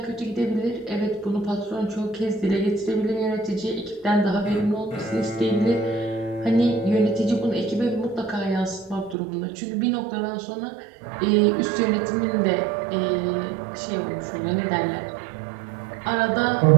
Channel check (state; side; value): drops out; left; at 9.2 s